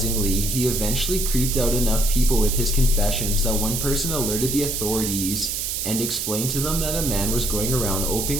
he eventually creeped out enough people with his confessions that one person alerted the authorities, and explained to them that a man was going around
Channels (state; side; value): noise; right; hiss, 2 dB below the sound